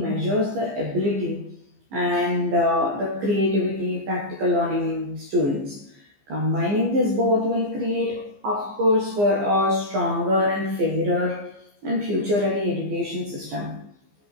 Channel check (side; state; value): left; late; 15 ms